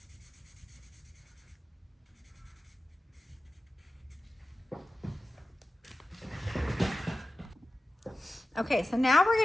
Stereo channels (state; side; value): normal; both; correlation 0.94